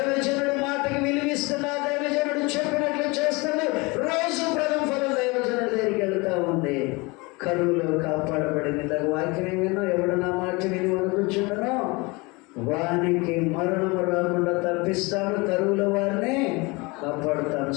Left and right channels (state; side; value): quieter; right; 25.9 dB